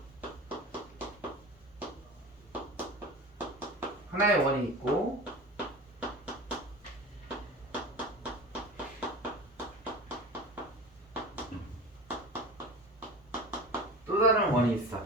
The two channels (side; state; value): both; normal; correlation 0.32